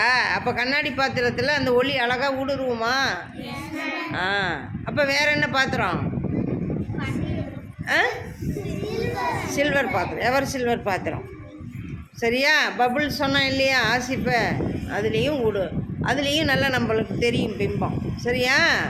அப்போ கண்ணாடி பாத்திரத்தில் அந்த ஒளி அழகாக ஊடுருவுமா? அப்போ வேற என்ன பாத்திரம்? சில்வர் பாத்திரம். எவர் சில்வர் பாத்திரம். சரியா? பபுள் சொன்னோம் இல்லையா? ஆசிப்பை அதுலேயும் நல்லா நம்மளுக்கு தெரியும் பிம்பம். சரியா?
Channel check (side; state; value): both; identical; correlation 1.00